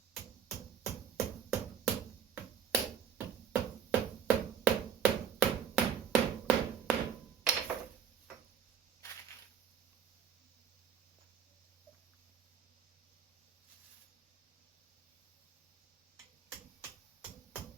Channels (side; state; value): left; quieter; 7.9 dB